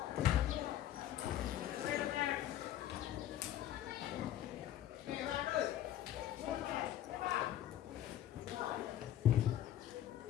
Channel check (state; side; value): quieter; right; 11.9 dB